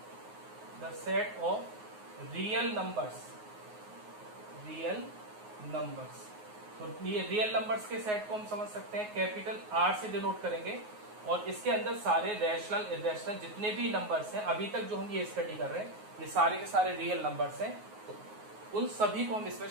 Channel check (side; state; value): left; late; 9.5 ms